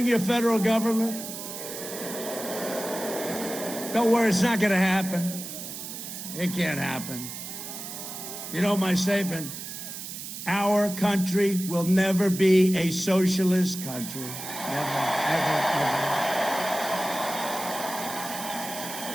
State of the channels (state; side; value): noise; right; hiss, 9 dB below the sound